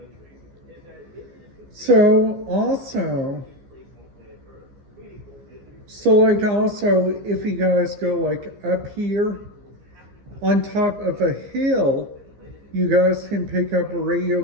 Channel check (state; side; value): late; left; 14 ms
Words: So also, if you guys go like up here on top of a hill, you guys can pick up a radio